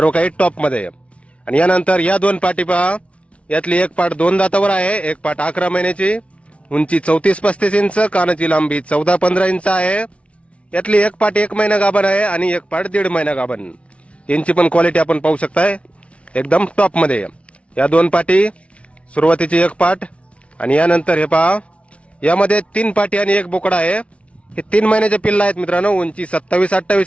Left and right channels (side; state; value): right; late; 0.062 ms